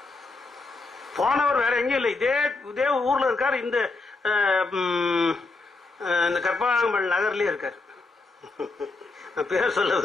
போனவர் வேற எங்கேயும் இல்லை, இதே ஊர்ல இருக்காரு. இந்த கற்பகாம்பல் நகர்லயே இருக்காரு. நான் பேர் சொல்ல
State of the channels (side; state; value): right; quieter; 3.6 dB